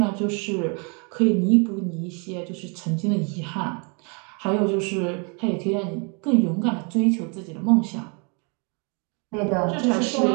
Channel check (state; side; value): quieter; left; 34.5 dB